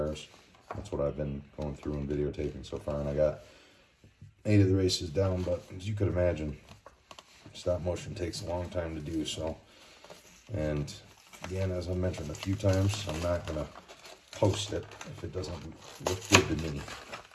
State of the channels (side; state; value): both; identical; correlation 1.00